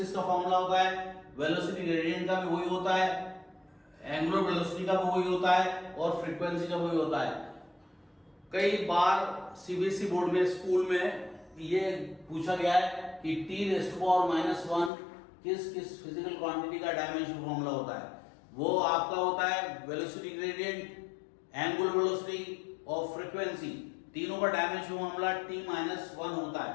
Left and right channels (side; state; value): right; drops out; at 14.9 s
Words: का फॉर्मूला होता है, वेलोसिटी ग्रेडियंट का भी वही होता है, एंगुलर वेलोसिटी का भी वही होता है, और फ्रीक्वेंसी का वही होता है। कई बार सीबीएसई बोर्ड में, स्कूल में ये पूछा गया है कि t⁻⁻1 किस किस फिजिकल क्वांटिटी का डायमेंशन फॉर्मूला होता है। वो आपका होता है वेलोसिटी ग्रेडियंट, एंगुलर वेलोसिटी और फ्रीक्वेंसी, तीनों का डायमेंशन फॉर्मूला t-1 होता है।